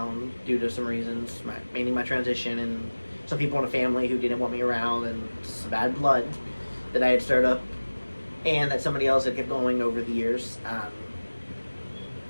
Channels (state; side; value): inverted; both; correlation -1.00